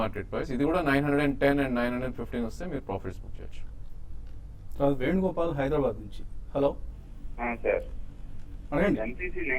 market price. ఇది కూడా 910 and 915 వస్తే మీరు ప్రాఫిట్స్ బుక్ చేయొచ్చు. తర్వాత వేణుగోపాల్ హైదరాబాద్ నుంచి. హలో సార్, అడగండి. ఎన్సీసీ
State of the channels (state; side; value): identical; both; correlation 1.00